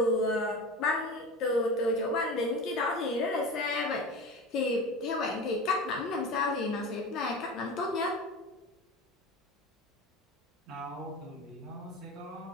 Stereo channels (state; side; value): normal; both; correlation 0.30